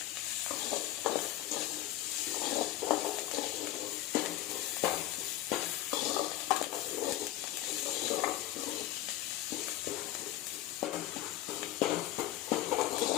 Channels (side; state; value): right; quieter; 14.7 dB